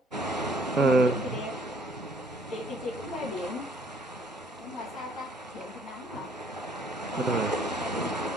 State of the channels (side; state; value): both; normal; correlation 0.61